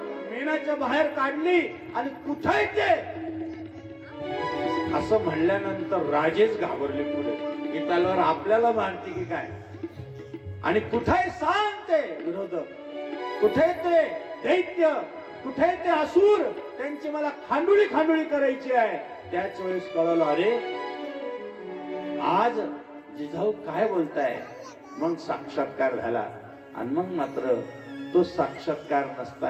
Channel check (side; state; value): both; identical; correlation 1.00